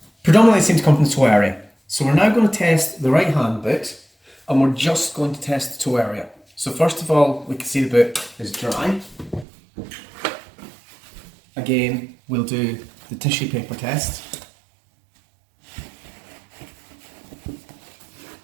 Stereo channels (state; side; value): drops out; left; at 9.5 s